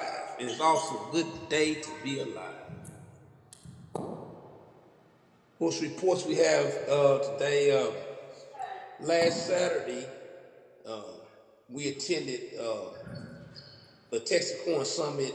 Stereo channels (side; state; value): both; identical; correlation 1.00